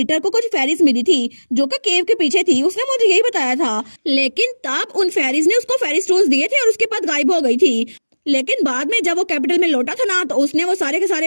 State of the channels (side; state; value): both; inverted; correlation -1.00